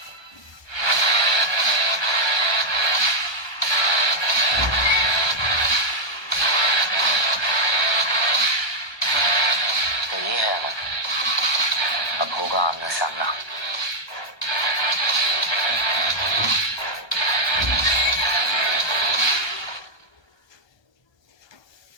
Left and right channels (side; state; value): right; late; 1.3 ms